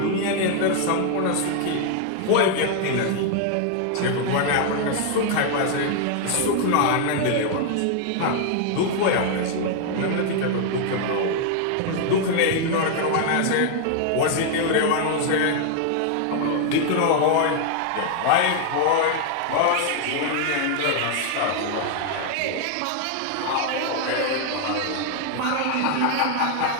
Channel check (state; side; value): different; both; correlation 0.00